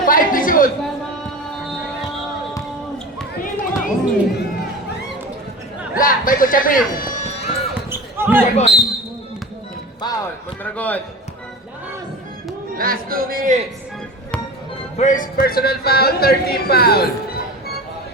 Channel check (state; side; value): normal; both; correlation 0.31